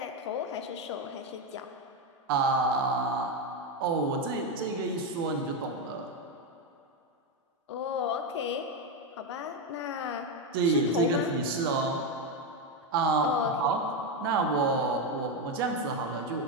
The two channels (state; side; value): normal; both; correlation 0.08